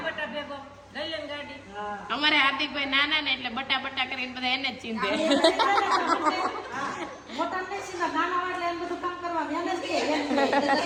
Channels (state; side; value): identical; both; correlation 1.00